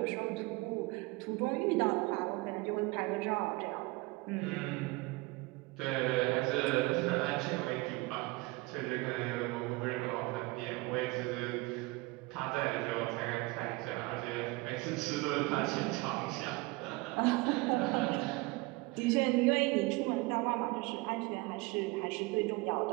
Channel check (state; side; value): quieter; left; 23.8 dB